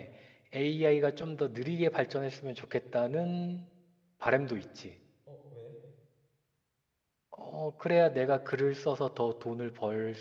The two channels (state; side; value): identical; both; correlation 1.00